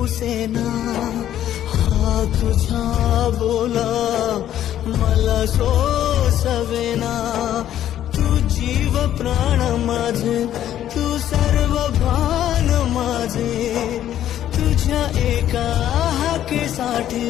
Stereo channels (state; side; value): quieter; right; 11.5 dB